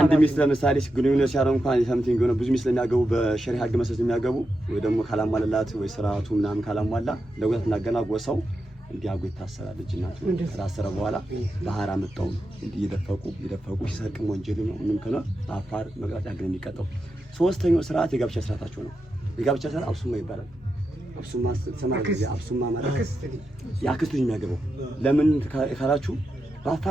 ሚስት ለምሳሌ ግንኙነት ሲያደርጉ እንኳን ሰምቲንግ የሆነ ብዙ ሚስት ለሚያገቡ በሸሪዓ ህግ መሰረት የሚያገቡ ወይ ደግሞ ካላሟላላት ወይ ስርዓቱ ምናምን ካላሟላ ለጉዳት እናገና ጎሳው እንዲያጉ ይታሰራል። ልጅናቱ ከታሰረ በኋላ ባህር አመጣው እየደፈቁ ሲሰርቅም ወንጀል ነው። ምንም ከሆነ አፋር መቅጣጫ ህግ የሚቀጣው። ሶስተኛው ስርዓት የጋብቻ ስርዓታቸው ነው። የጋብቻ ስርዓት አብሱማ ይባላል። አብሱማ ማለት የአክስት ልጅ የሚያገባው ለምን ካላችሁ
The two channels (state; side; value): normal; both; correlation 0.88